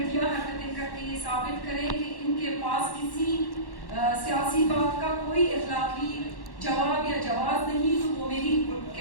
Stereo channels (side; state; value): right; late; 1.1 ms